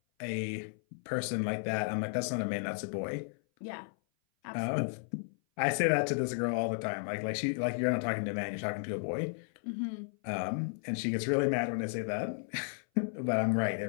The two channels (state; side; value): silent; right; 55 dB below the other